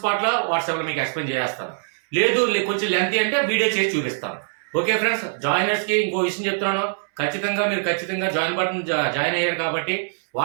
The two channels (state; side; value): silent; left; 64 dB below the other